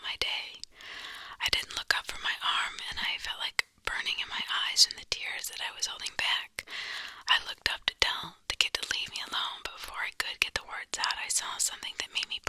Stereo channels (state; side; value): identical; both; correlation 1.00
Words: my day. I didn't look up from my arm, and I felt like burning in my eyes from the tears that I was holding back. I looked up to tell the kid to leave me alone, but before I could get the words out, I saw something that made me